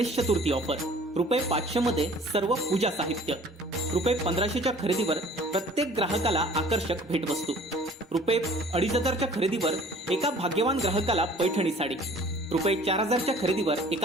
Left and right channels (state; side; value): normal; both; correlation 0.50